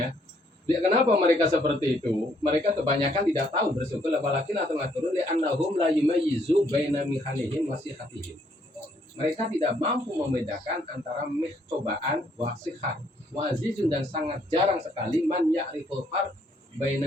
kenapa mereka seperti itu? Mereka kebanyakan tidak tahu bersyukur, apalagi atau ngatur li annahum la yumayyizu baina mihanihim wasihatihim. Mereka tidak mampu membedakan antara cobaan wasihat wazizun, dan sangat jarang sekali man ya'riful farq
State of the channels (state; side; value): normal; both; correlation 0.68